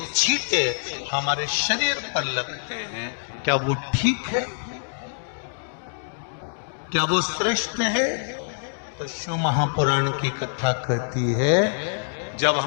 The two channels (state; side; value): silent; right; digital silence